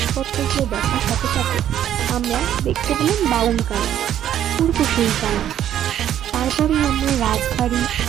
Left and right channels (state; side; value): quieter; left; 10.8 dB